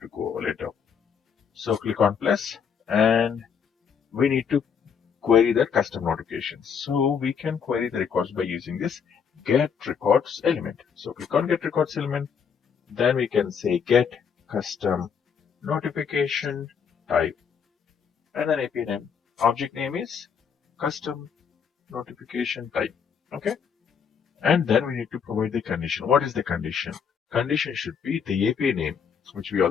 to go later. So click on plus, and we need to query that custom notifications. So we can query the records by using this get records element. So click on get records element, then we can say get custom notification type, and then API name. Object name is custom notification type. Okay. And then we need to provide the condition. What is the condition? Condition should be the API name, which we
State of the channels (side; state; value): right; quieter; 6.9 dB